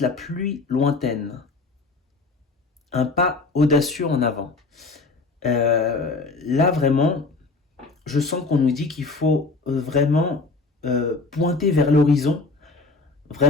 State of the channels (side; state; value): right; quieter; 3.8 dB